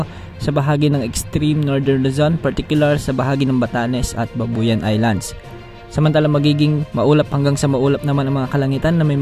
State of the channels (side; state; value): both; identical; correlation 1.00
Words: sa bahagi ng extreme northern Luzon, particular sa bahagi ng Batanes at Babuyan Islands. Samantala magiging maulap hanggang sa maulap naman ang mga kalangitan na may